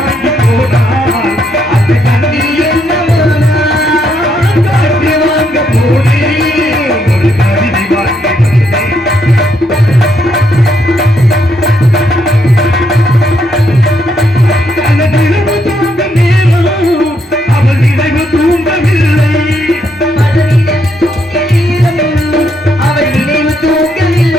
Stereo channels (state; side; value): normal; both; correlation 0.75